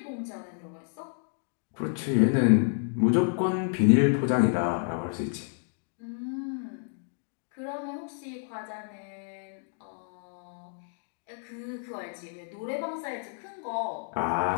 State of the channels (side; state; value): right; silent; digital silence